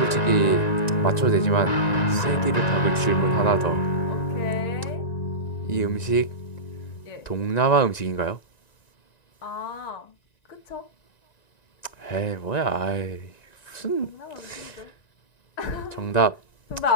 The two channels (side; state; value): right; late; 1.9 ms